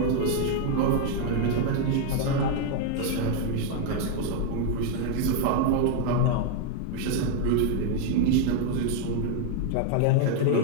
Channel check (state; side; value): different; both; correlation 0.00